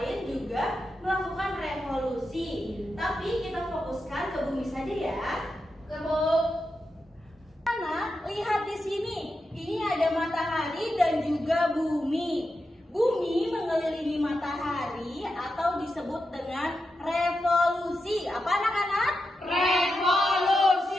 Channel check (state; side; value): normal; both; correlation 0.88